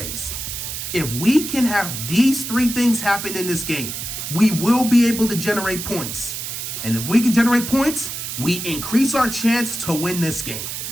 If we can have these 3 things happen in this game, we will be able to generate points. And if we can generate points, we increase our chance to win this game.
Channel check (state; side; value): noise; right; hiss, 6 dB below the sound